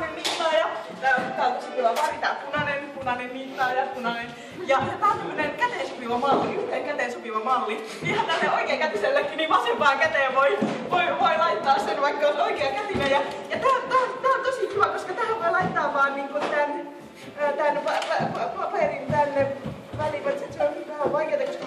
niittaaja. Tää on tosi kiva väri, tää punainen niittaaja, punainen. Ja tää on tämmönen käteen sopiva malli, yhteen käteen sopiva malli. Ihan tälle oikeakätisellekin, niin vasempaan käteen voi laittaa sen, vaikka on oikeakätinen. Ja tää on tosi kiva, koska tähän voi laittaa vaan niinku tän paperin tänne väliin. Se on vähän vaikeeta, koska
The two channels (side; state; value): both; identical; correlation 1.00